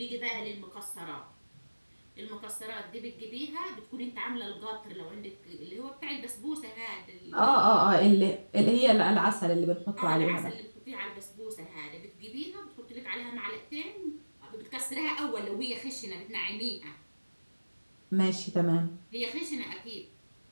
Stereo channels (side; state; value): both; inverted; correlation -1.00